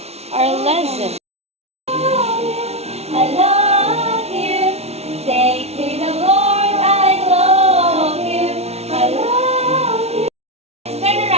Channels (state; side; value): late; left; 0.31 ms